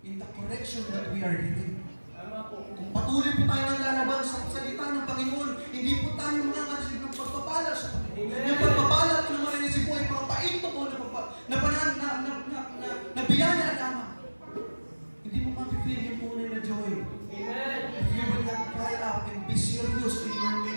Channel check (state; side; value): inverted; both; correlation -1.00